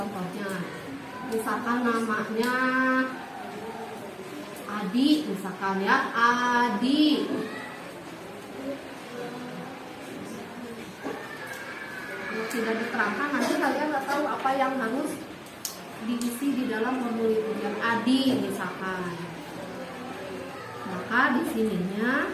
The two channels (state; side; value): identical; both; correlation 1.00